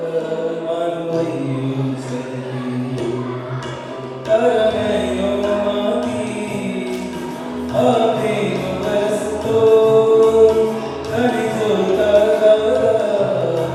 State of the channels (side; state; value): both; identical; correlation 1.00